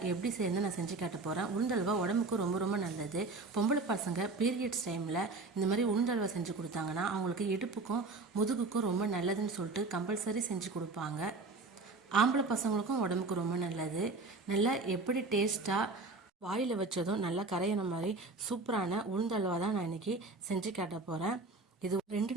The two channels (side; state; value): left; quieter; 3.6 dB